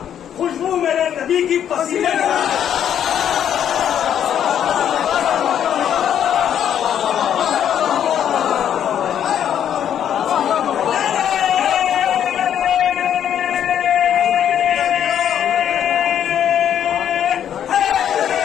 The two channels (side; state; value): right; quieter; 9.6 dB